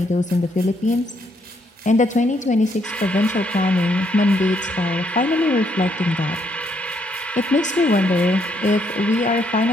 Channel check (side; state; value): both; normal; correlation 0.73